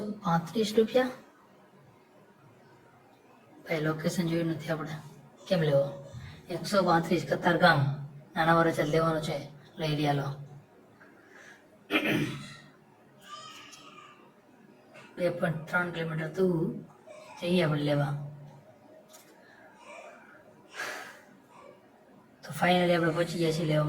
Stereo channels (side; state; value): both; identical; correlation 1.00